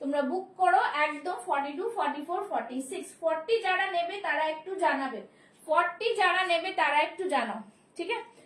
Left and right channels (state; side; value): identical; both; correlation 1.00